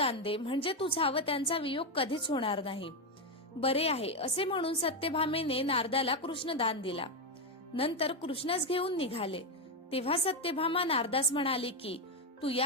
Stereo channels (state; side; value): normal; both; correlation 0.08